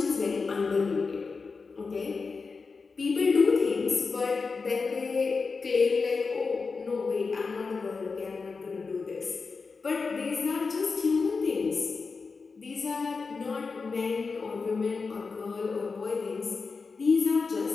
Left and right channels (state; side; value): quieter; right; 4.6 dB